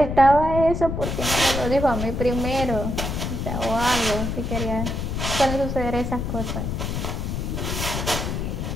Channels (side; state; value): left; noise; rumble, 2 dB below the sound